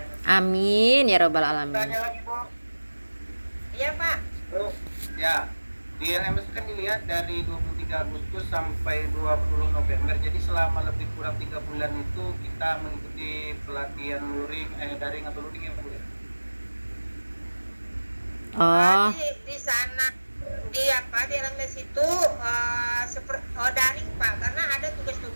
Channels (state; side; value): inverted; both; correlation -1.00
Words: Amin ya robbal alamin. Tanya lagi Bu. Iya Pak. Bu, ya di LMS kan dilihat dari 23 Agustus sampai 20 November. Jadi selama lebih kurang 3 bulan itu kita mengikuti pelatihan daring atau luring ya Bu ya? Oh, Di sana di LMS itu daring Pak, karena ada